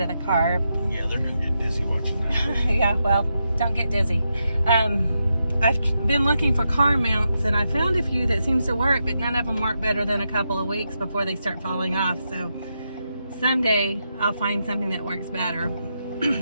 of the car. Yeah, they're gonna get dizzy watching that. Yeah, well, don't get dizzy. I've been looking for car mounts, and I found a few that seems to work, but none of them work better than a couple of weeks before they start falling off. So someday I'll find something that works better.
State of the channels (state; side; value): inverted; both; correlation -0.85